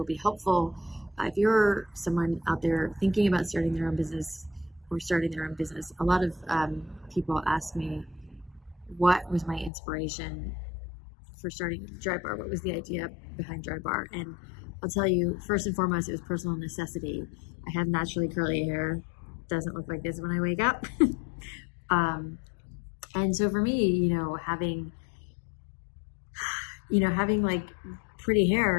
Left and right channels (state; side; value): drops out; right; at 9.7 s